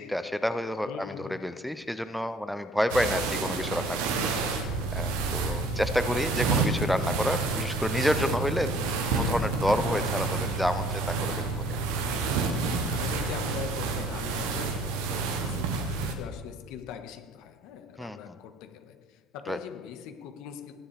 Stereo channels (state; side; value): normal; both; correlation 0.56